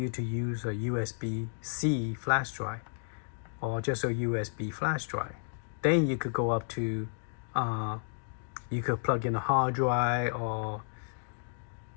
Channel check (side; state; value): right; silent; digital silence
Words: to use a USB-C flash drive or just a USB flash drive, then you could go up to you could plug in a hard drive or